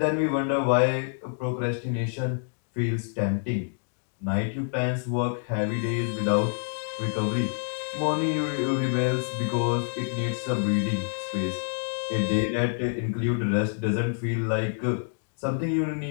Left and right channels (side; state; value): right; silent; digital silence